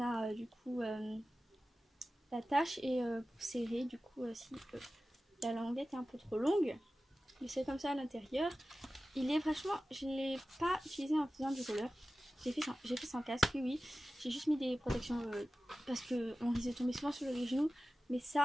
du coup la tâche et pour serrer, du coup, si la languette est un peu trop longue, mais c'est comme ça à l'intérieur. Il est franchement, je ne l'ai pas utilisé en faisant du roller. J'ai fait sans casque, oui. J'ai juste mis des protections parce qu'on risque de tomber souvent sur les genoux. Mais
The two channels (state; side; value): normal; both; correlation 0.95